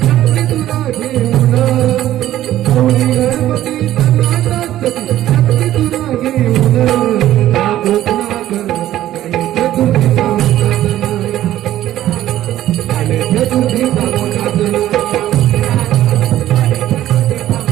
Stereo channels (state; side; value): quieter; left; 13.3 dB